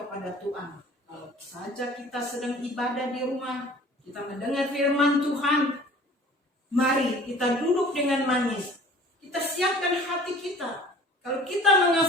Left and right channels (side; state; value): both; normal; correlation 0.47